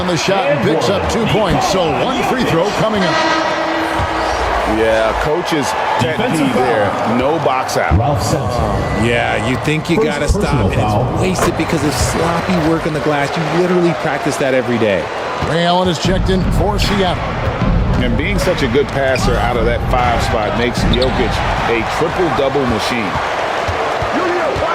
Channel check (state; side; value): identical; both; correlation 1.00